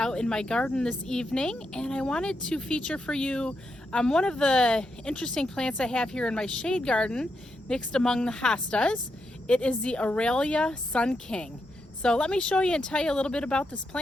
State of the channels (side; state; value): both; normal; correlation 0.83